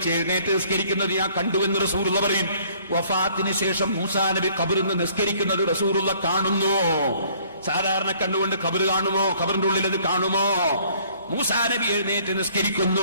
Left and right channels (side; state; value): both; inverted; correlation -0.59